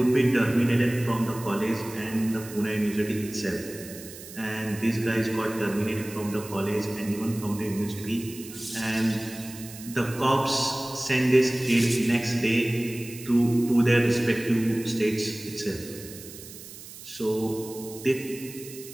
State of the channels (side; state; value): right; noise; hiss, 15 dB below the sound